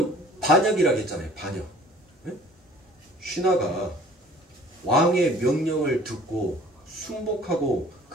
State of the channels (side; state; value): both; normal; correlation 0.51